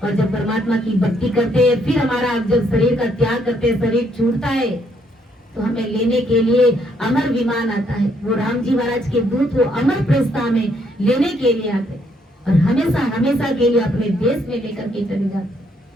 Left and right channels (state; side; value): normal; both; correlation 0.71